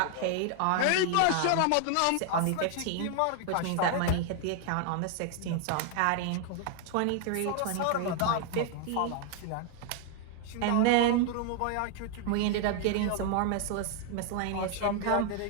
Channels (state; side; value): different; both; correlation 0.00